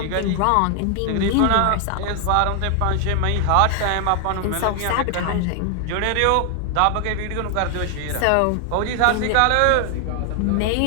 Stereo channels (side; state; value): both; different; correlation 0.00